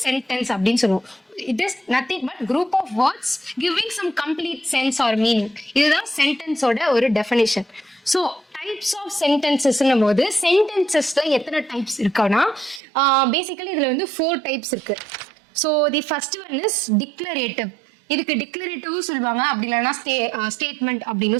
சென்டென்ஸ் அப்படின்னு சொல்லுவோம். It is nothing but group of words giving some complete sense or meaning. இதுதான் சென்டென்ஸோட ஒரு டெஃபினேஷன். ஸோ டைப்ஸ் ஆஃப் சென்டென்சஸ்ன்னும் போது சென்டென்சஸ்ல எத்தனை டைப்ஸ் இருக்குன்னா, பேசிக்கலி இதுல வந்து 4 டைப்ஸ் இருக்கு. So the first one is declarative. இதுக்கு டிக்ளரேட்டிவும் சொல்லுவாங்க, அப்படி இல்லைன்னா ஸ்டேட்மெண்ட் அப்படின்னு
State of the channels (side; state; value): left; drops out; at 12.8 s